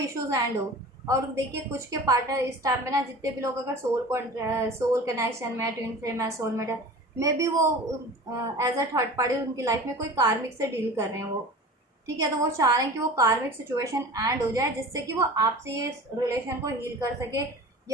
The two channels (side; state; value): both; normal; correlation 0.38